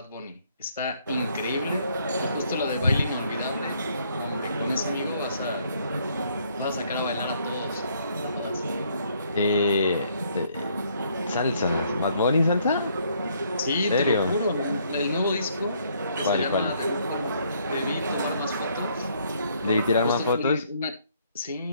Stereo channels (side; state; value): both; inverted; correlation -0.68